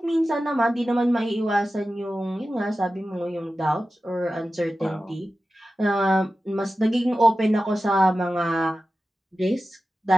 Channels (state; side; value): normal; both; correlation 0.94